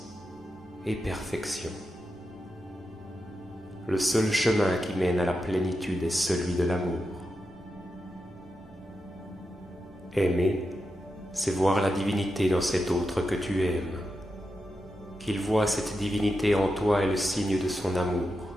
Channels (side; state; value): both; normal; correlation 0.88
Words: et perfection. Le seul chemin qui mène à la plénitude est celui de l'amour. Aimer, c'est voir la divinité dans cet autre que tu aimes. Qu'il voit cette divinité en toi est le signe de son amour.